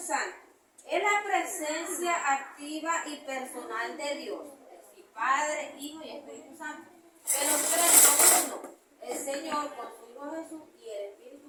Es la presencia activa y personal de Dios, es decir, Padre, Hijo y Espíritu Santo. Que los tres son uno, el Señor con su Hijo Jesús y el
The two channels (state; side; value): identical; both; correlation 1.00